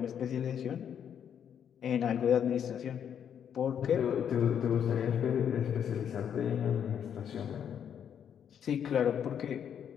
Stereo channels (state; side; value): quieter; right; 8.6 dB